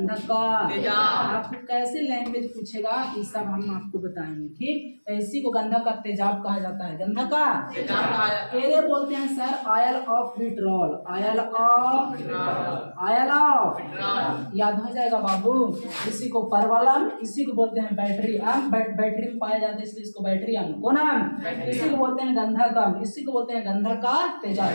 का। आपको कैसे लैंग्वेज पूछेगा ये सब हम आपको बताएंगे, ठीक। तो इसी को गंधक का तेजाब कहा जाता है, गंधक का। ये बोलते हैं sir oil of vitriol, oil of, याद हो जाएगा बाबू। इसी को परबल अम्ल, इसी को बोलते हैं बैटरी अम्ल, बैटरी में पाया जाता है इसलिए इसको बैटरी अम्ल। कौन अम्ल, इसी को बोलते हैं गंधक अम्ल, इसी को बोलते हैं गंधक का तेजाब,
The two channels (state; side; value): inverted; both; correlation -1.00